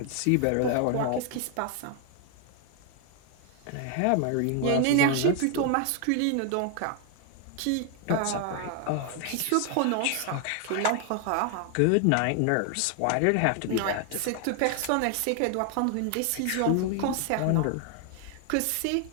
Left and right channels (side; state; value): both; different; correlation 0.00